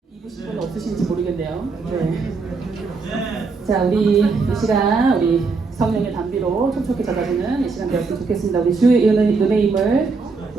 입으신 분 없으신지 모르겠네요. 네. 자, 우리 이 시간 우리 성령의 담비로 촉촉히 젖어주는 이 시간 되었으면 좋겠습니다. 우리 주의 은혜의 힘을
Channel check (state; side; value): quieter; left; 4.4 dB